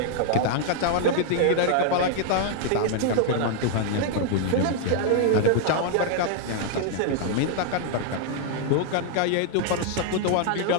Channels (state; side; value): different; both; correlation 0.00